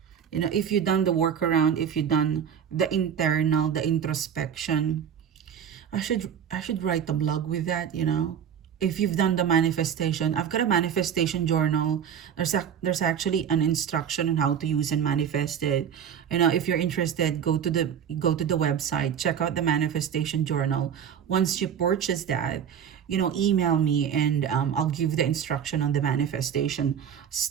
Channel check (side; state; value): left; quieter; 8.4 dB